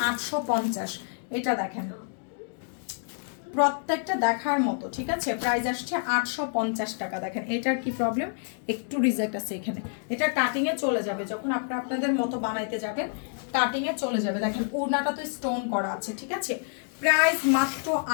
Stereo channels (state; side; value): silent; right; 57 dB below the other